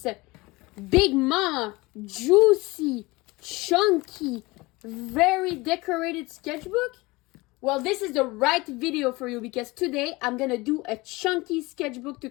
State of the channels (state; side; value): quieter; right; 22.5 dB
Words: Big mama, juicy, chunky, very decorated sketchbook? Well, this is the right video for you because today I'm gonna do a chunky sketchbook